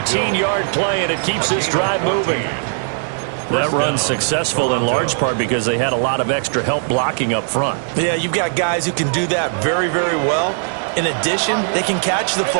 play, and it keeps this drive moving. That run's successful in large part because they had a lot of extra help blocking up front. Yeah, you've got guys who can do that very, very well. In addition, they can catch the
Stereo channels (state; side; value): silent; left; digital silence